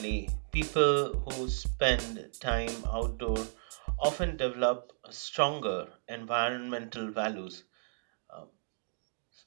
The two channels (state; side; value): silent; left; digital silence